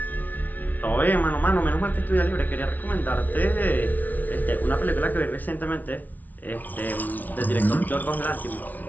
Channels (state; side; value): late; right; 0.078 ms